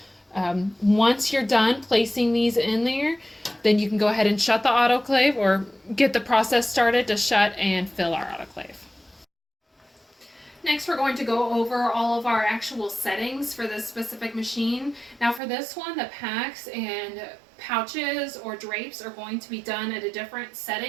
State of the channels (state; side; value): drops out; left; at 15.4 s